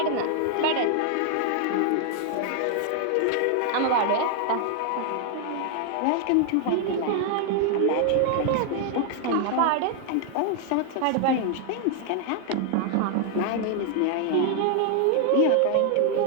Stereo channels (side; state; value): both; different; correlation 0.00